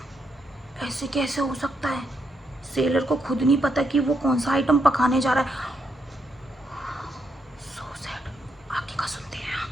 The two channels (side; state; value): both; normal; correlation 0.79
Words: ऐसे कैसे हो सकता है? सेलर को खुद नहीं पता कि वो कौन सा आइटम पकाने जा रहा है। So sad. आगे का सुनते हैं।